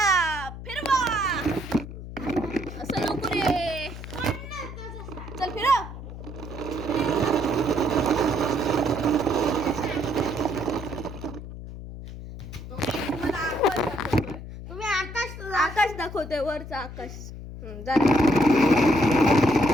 फिरवा. असं नको रे. चल फिरव. तुम्ही आकाश आकाश दाखवतोय वरचं आकाश. जा.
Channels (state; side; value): noise; left; hum, 11 dB below the sound